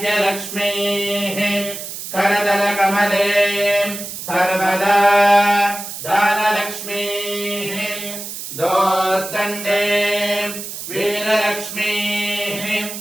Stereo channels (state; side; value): noise; right; hiss, 9 dB below the sound